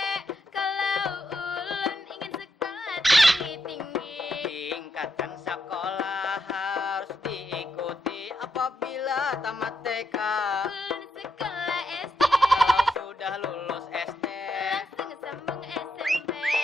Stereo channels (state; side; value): normal; both; correlation 0.81